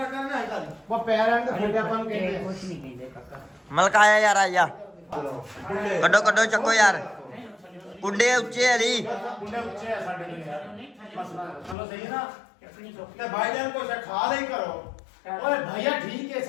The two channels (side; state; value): right; drops out; at 11.8 s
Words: ਕਰਨਾ ਹੈ ਤਾਂ ਉਹ ਪੈਰ ਐਂਡ ਫੁੱਟੇ ਆਪਾਂ ਨੂੰ ਕਹਿੰਦੇ ਆ। ਕੁਛ ਨਹੀਂ ਕਹਿੰਦੇ ਕਾਕਾ ਮਲਕ ਆਇਆ ਯਾਰ ਆਇਆ ਕੱਢੋ ਚੱਕੋ ਯਾਰ ਕੁੰਡੇ ਉੱਚੇ ਹਲੀ ਮੁੰਡੇ ਉੱਚੇ ਆ ਸਾਡੇ ਲਈ ਯਾਰ ਮਸਲਾ ਚਲੋ ਸਹੀ ਹੈ ਨਾ ਚੱਕਣੀ ਸੌਖੀ ਤੇ ਭਾਈਜਾਨ ਕੁਛ ਖਾ ਲਈ ਕਰੋ ਓਏ ਭਈਆ ਠੀਕ ਹੈ